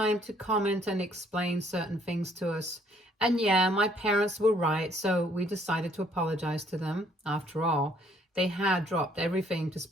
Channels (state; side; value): normal; both; correlation 0.64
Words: to comment and explain certain things to us. And yeah, my parents were right, so we decided to apologize to them after all. They had dropped everything to